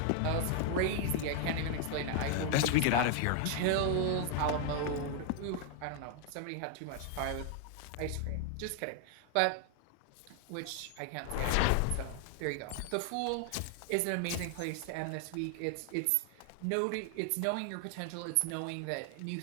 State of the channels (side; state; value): both; different; correlation 0.00